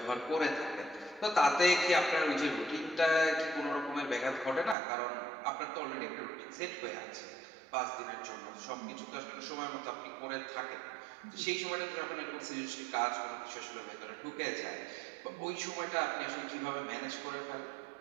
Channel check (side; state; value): left; drops out; at 4.8 s